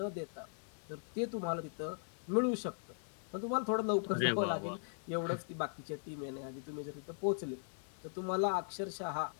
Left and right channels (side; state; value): right; silent; 52 dB below the other